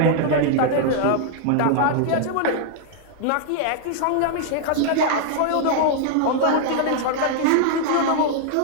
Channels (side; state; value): both; different; correlation 0.00